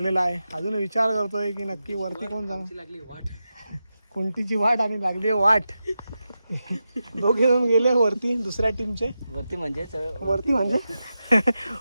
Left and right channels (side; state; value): both; inverted; correlation -0.91